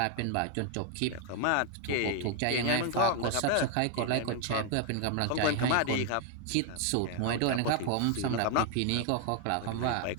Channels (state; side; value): different; both; correlation 0.01